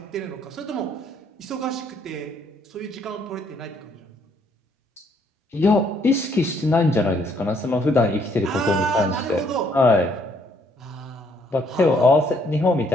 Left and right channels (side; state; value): both; normal; correlation 0.68